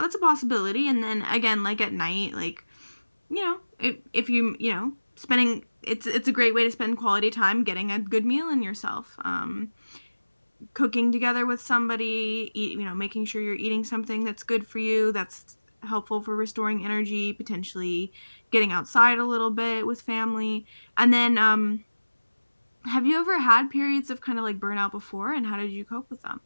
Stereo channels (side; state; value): both; inverted; correlation -1.00